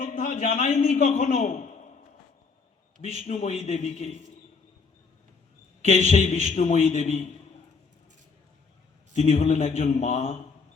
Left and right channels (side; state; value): right; quieter; 4.7 dB